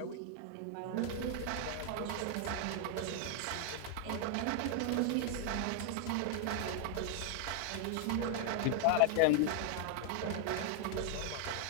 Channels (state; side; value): different; both; correlation 0.00